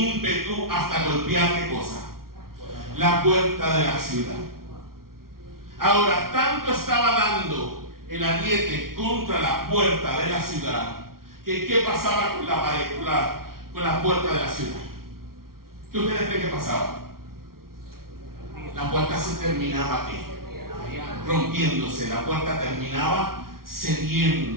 hasta golpear ¿qué cosa? La puerta de la ciudad. Ahora, tanto estaba dando el ariete contra la puerta de la ciudad que ¿qué pasaba con la pared, con la puerta de la ciudad? ¿Qué ustedes creen que pasaba? La puerta se terminaba ¿qué? Rompiéndose, la puerta terminaba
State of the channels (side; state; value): left; late; 0.93 ms